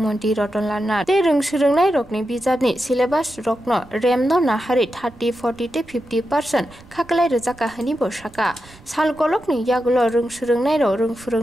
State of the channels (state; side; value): noise; right; rumble, 23 dB below the sound